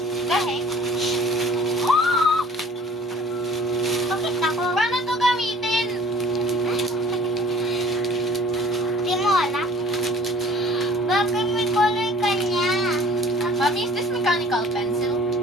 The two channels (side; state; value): both; normal; correlation 0.50